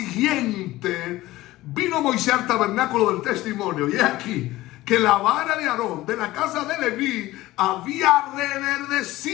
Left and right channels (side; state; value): right; quieter; 17.4 dB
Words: vino Moisés al tabernáculo del testimonio. Y aquí que la vara de Aarón de la casa de Leví había